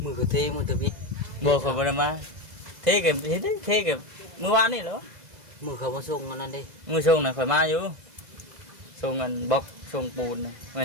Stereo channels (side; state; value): left; late; 2.0 ms